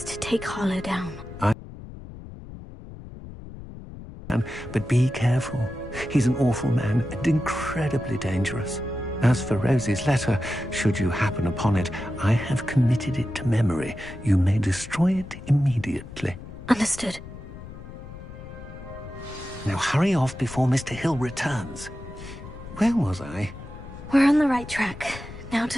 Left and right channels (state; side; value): noise; left; rumble, 14 dB below the sound